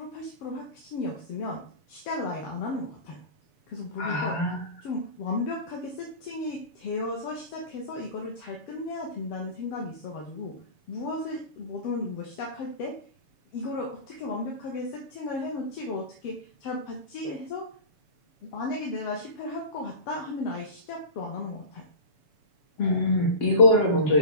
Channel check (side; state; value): right; late; 7.0 ms